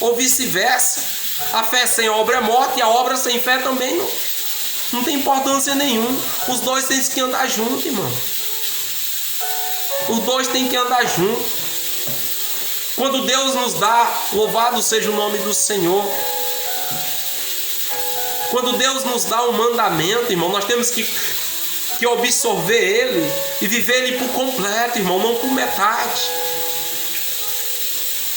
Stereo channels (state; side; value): normal; both; correlation 0.97